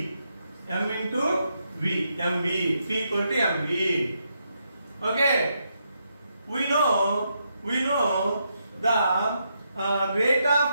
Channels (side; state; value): both; inverted; correlation -0.80